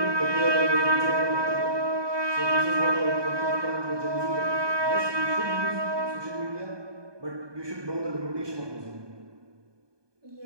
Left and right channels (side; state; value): left; late; 1.2 ms